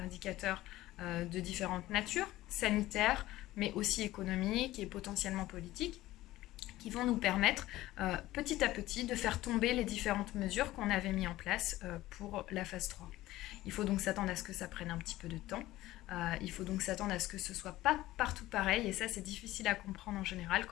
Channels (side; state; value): right; quieter; 16.5 dB